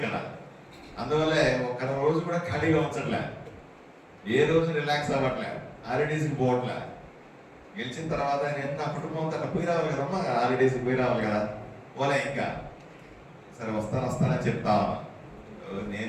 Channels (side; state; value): both; identical; correlation 1.00